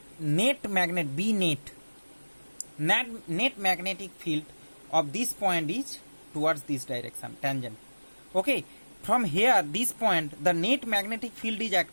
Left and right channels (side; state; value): both; inverted; correlation -1.00